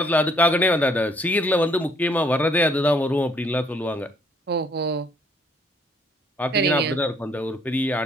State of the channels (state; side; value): normal; both; correlation 0.64